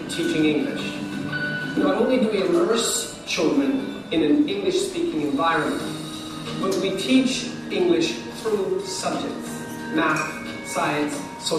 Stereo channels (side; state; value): both; identical; correlation 1.00